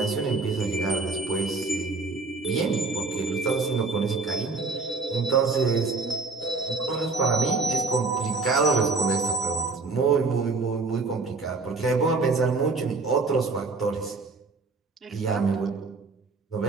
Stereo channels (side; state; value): left; quieter; 3.9 dB